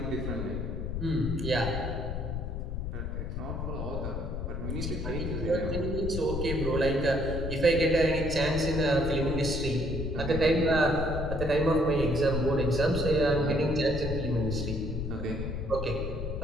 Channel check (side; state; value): left; noise; rumble, 4 dB below the sound